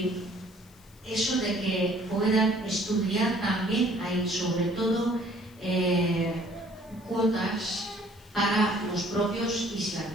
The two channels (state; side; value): noise; left; hiss, 27 dB below the sound